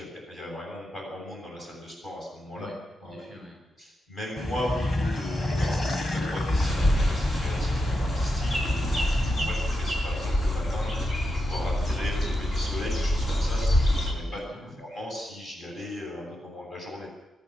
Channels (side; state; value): both; normal; correlation 0.87